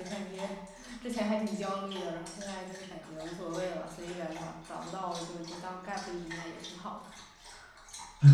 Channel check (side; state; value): both; identical; correlation 1.00